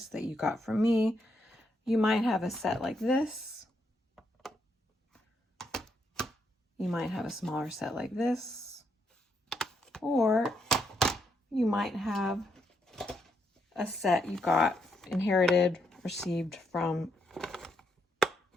that you got from me. You might have a set like this. You might have a smaller set like this. Or you might have a set you got inherited, received from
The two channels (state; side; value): normal; both; correlation 0.77